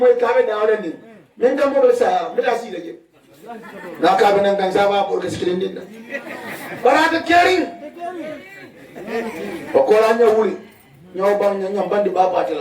kabe da wala ni men gam mo sa me da si daje na kabe nan kan sa ba bor ke skilin din barata kering ko la nya wuli nyaw bang nyam bandi ba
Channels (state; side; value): identical; both; correlation 1.00